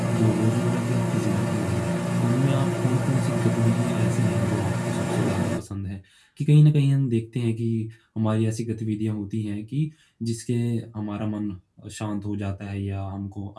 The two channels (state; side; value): identical; both; correlation 1.00